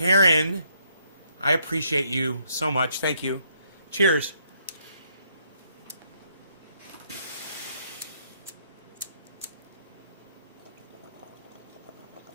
I appreciate you so much. Thank you. Cheers.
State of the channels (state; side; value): inverted; both; correlation -0.71